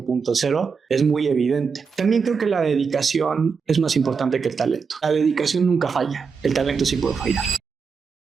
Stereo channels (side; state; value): left; quieter; 5.5 dB